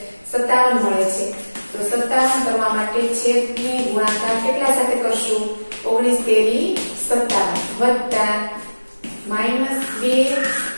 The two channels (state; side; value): inverted; both; correlation -1.00